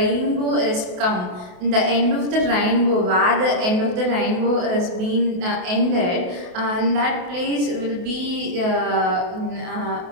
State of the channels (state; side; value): late; left; 28 ms